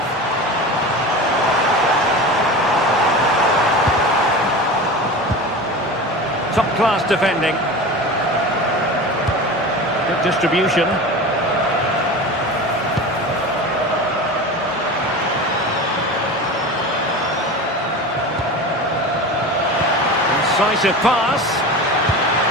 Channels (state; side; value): normal; both; correlation 0.31